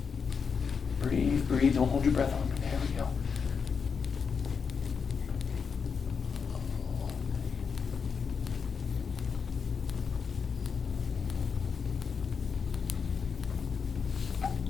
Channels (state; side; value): quieter; right; 5.9 dB